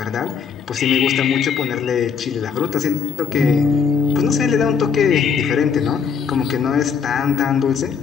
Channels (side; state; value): right; quieter; 6.4 dB